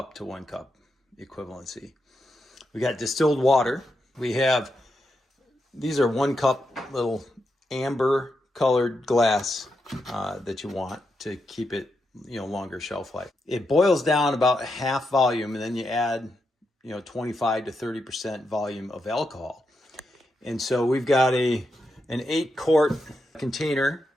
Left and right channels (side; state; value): both; normal; correlation 0.84